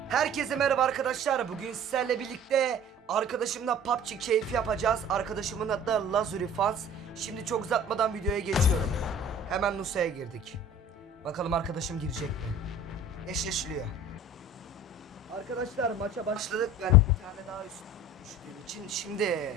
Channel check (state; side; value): normal; both; correlation 0.44